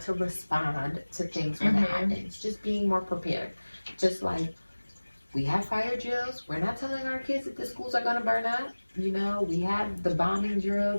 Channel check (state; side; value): inverted; both; correlation -1.00